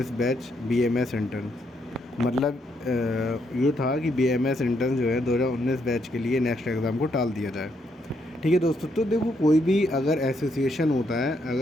batch BMS intern. मतलब ये था कि बीएमएस इंटर्न जो है 2019 बैच के लिए नेक्स्ट एग्ज़ाम को टाल दिया जाए। ठीक है दोस्तों, तो देखो कोई भी अगर एसोसिएशन होता है,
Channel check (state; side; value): normal; both; correlation 0.76